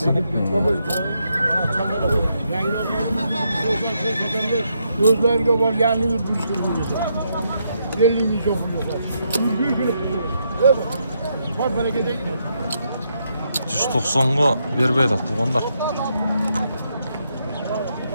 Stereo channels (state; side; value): inverted; both; correlation -0.78